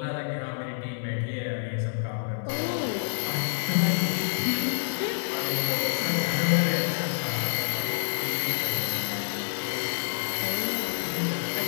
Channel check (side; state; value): right; silent; digital silence